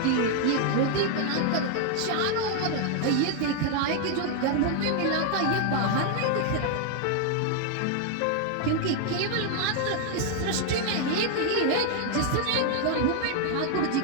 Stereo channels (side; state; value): both; different; correlation 0.00